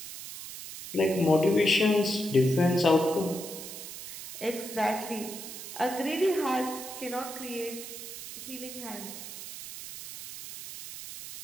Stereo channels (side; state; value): right; noise; hiss, 11 dB below the sound